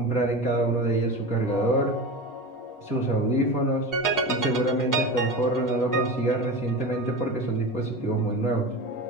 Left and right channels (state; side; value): late; right; 8.1 ms